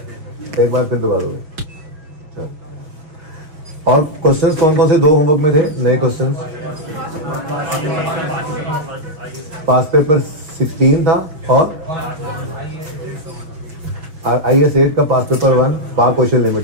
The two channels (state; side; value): late; left; 6.3 ms